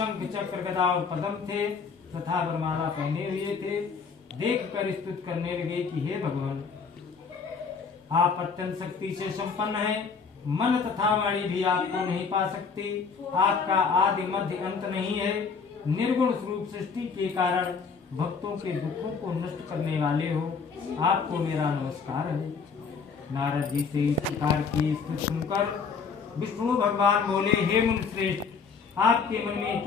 चक्र गदा और पद्म थे तथा वरमाला पहने हुए थे, देख कर स्तुति करने लगे कि हे भगवान, आप अत्यंत शक्ति से संपन्न हैं। मन तथा वाणी भी आपको नहीं पा सकती। आपका आदि मध्य अंत नहीं है। निर्गुण स्वरूप सृष्टि के कारण भक्तों के दुखों को नष्ट करने वाले हो। आपको मेरा नमस्कार है। नारद जी से इस प्रकार की स्तुति सुनकर विष्णु भगवान बोले, हे मुनिश्रेष्ठ, आपके मन में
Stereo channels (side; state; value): right; quieter; 5.4 dB